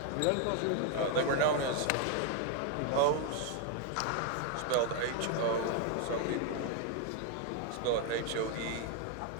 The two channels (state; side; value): different; both; correlation 0.00